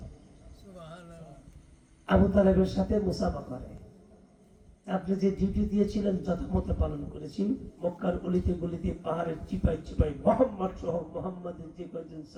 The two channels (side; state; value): both; identical; correlation 1.00